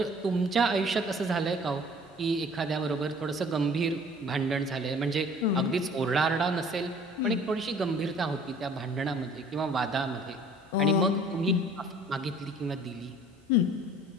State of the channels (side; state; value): both; normal; correlation 0.51